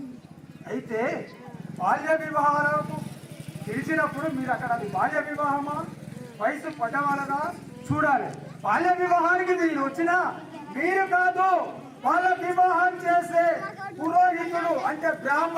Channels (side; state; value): both; identical; correlation 1.00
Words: అయితే బాల్య వివాహాలకు తెలిసినప్పుడు మీరు అక్కడ అది బాల్య వివాహమా, వయసు పడ్డవాళ్ళదా చూడాలి. బాల్య వివాహానికి మీరు వచ్చినా మీరు కాదు, వాళ్ళ వివాహం చేసే పురోహితుడు అంటే